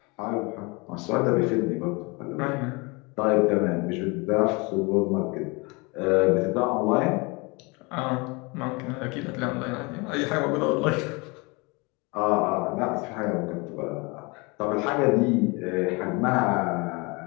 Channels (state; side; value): quieter; right; 27.9 dB